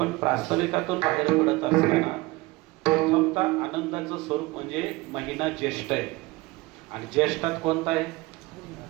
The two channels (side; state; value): left; quieter; 21.7 dB